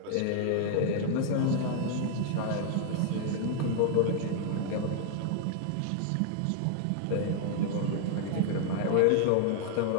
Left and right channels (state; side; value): different; both; correlation 0.00